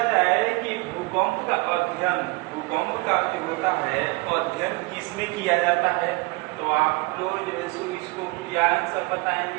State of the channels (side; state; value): left; quieter; 25.5 dB